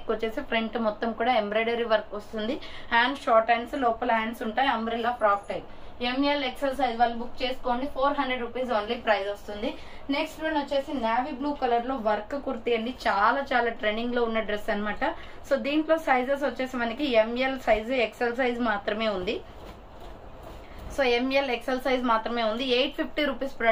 వచ్చేసి ఫ్రంట్ మొత్తం కూడా ఎంబ్రాయిడరీ వర్క్ వస్తుంది. హ్యాండ్స్ షార్ట్ హ్యాండ్స్, లోపల హ్యాండ్స్ ఉంటాయి. Umbrella frock type. ML XL size వాళ్ళు బుక్ చేసుకోండి. 400 రూపీస్ ఓన్లీ ప్రైస్ వస్తుంది. నెక్స్ట్ వన్ వచ్చేసి నావీ బ్లూ కలర్ లో వర్క్ కుర్తీ అండి. చాలా ట్రెండింగ్ లో ఉన్న డ్రెస్ అనమాట. సో దీంట్లో సైజెస్ వచ్చేసి మనకి ML సైజ్, ఎక్సెల్ సైజ్ మాత్రమే ఉంది. సో ఎంఎల్ ఎక్సెల్ సైజ్ మాత్రమే ఉంది. 850 రూపీస్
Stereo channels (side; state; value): both; identical; correlation 1.00